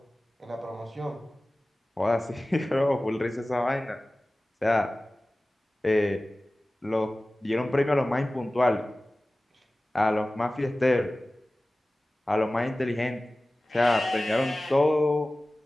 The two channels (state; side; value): normal; both; correlation 0.97